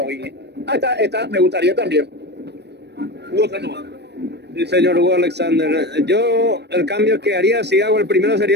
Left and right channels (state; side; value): late; left; 0.49 ms